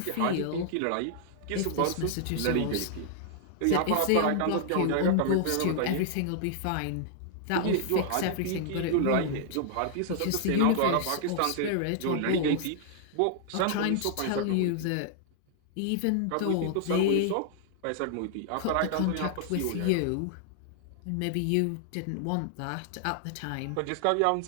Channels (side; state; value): both; different; correlation -0.01